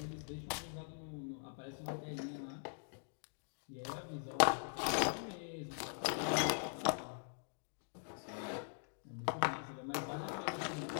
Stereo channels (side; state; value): right; silent; digital silence